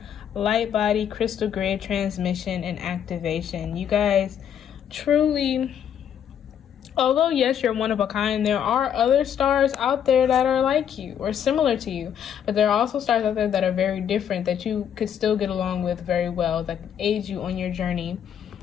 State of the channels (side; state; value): right; quieter; 8.9 dB